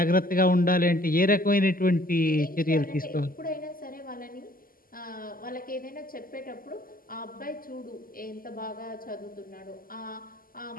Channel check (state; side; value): late; right; 0.42 ms